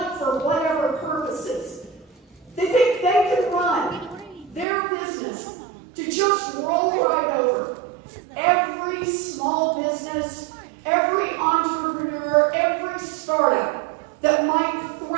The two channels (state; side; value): drops out; left; at 4.7 s